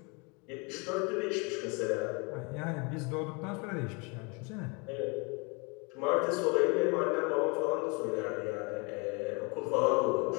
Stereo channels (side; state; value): right; quieter; 31.1 dB